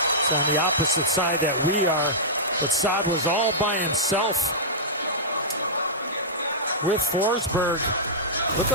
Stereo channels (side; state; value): both; normal; correlation -0.13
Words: It's on the opposite side that we are. But Saad was all by himself with Forsberg. Looked